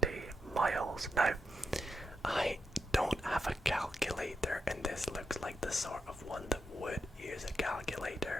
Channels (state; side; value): normal; both; correlation 0.84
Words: miles? Now, I don't have a calculator, and this looks like the sort of one that would use a